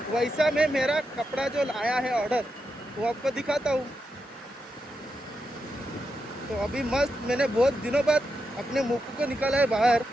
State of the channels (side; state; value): both; normal; correlation 0.86